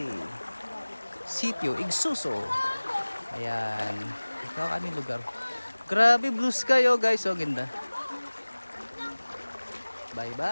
Sitio Igsuso. Ayan. Ito ang aming lugar. Grabe blue sky oh guys, oh ganda. Bye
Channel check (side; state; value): both; inverted; correlation -1.00